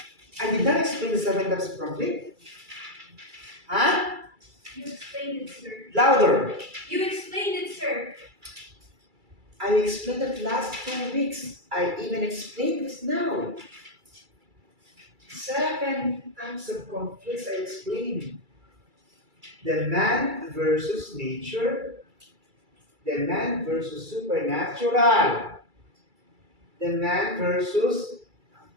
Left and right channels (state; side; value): late; left; 2.3 ms